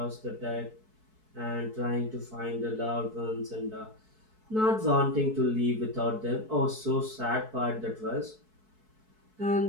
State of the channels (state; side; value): late; left; 4.6 ms